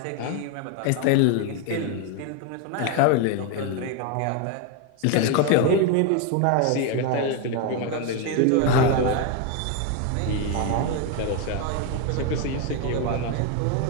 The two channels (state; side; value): different; both; correlation 0.01